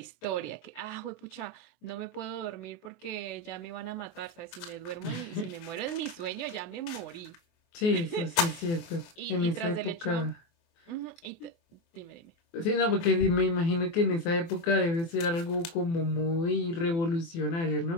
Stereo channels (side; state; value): right; late; 24 ms